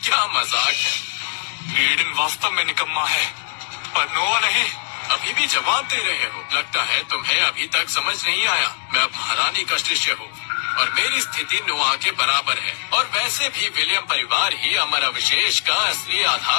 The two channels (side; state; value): right; silent; digital silence